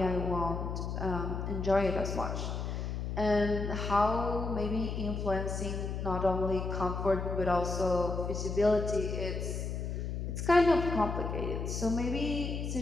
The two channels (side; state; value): left; noise; hum, 3 dB below the sound